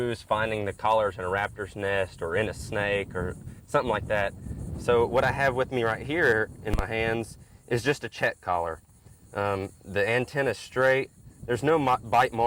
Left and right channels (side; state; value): both; identical; correlation 1.00